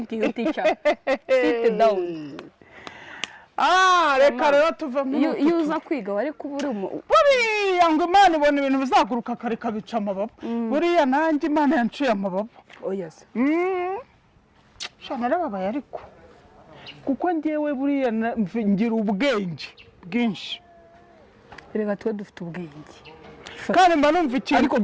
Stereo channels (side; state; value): both; identical; correlation 1.00